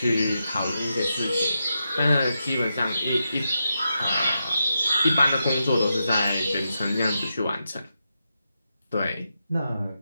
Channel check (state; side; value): inverted; both; correlation -0.86